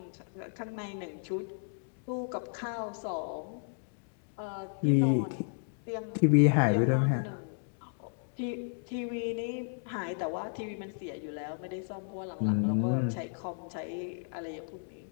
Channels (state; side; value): silent; right; digital silence